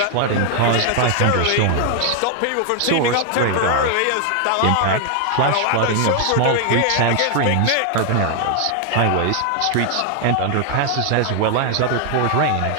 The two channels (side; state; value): both; different; correlation 0.00